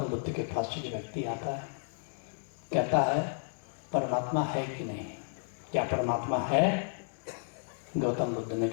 बुद्ध के पास एक व्यक्ति आता है, कहता है परमात्मा है कि नहीं, क्या परमात्मा है? गौतम बुद्ध ने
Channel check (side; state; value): right; silent; digital silence